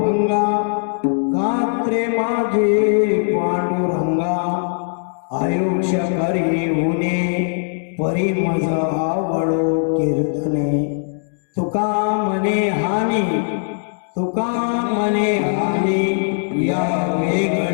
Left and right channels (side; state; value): right; silent; digital silence